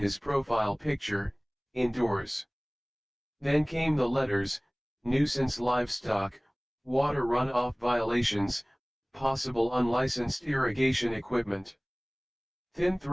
profile picture, indoors. Then came the letters: nuisance livestock, water runoff violations, possible unlicensed irrigation equipment. Thin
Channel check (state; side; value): identical; both; correlation 1.00